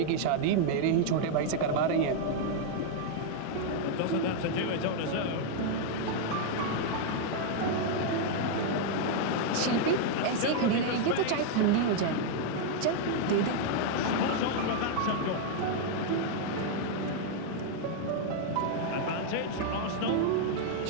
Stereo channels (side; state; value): both; different; correlation 0.00